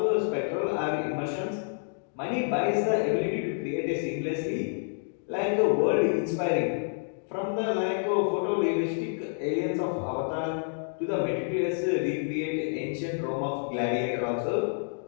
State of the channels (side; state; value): right; silent; digital silence